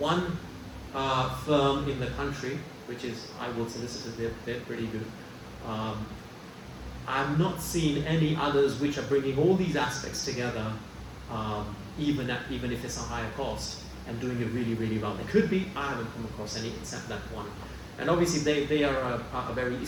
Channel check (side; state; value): both; identical; correlation 1.00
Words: firm in the country, which is Iwood Solicitors, they're pretty good. I've not seen any others which are bringing all these aspects together, even if it's a higher cost, and doing it really, really well. There could be, I haven't come across any except that one. And obviously they are a very